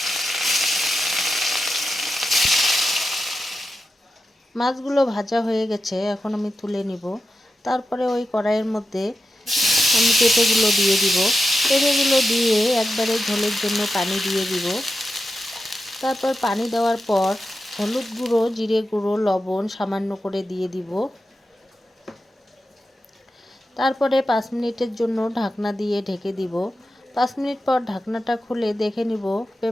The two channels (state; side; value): normal; both; correlation 0.90